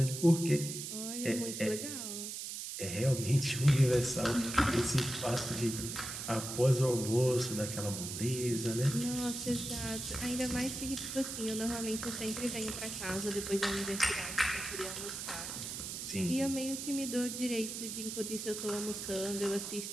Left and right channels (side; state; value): right; noise; hiss, 6 dB below the sound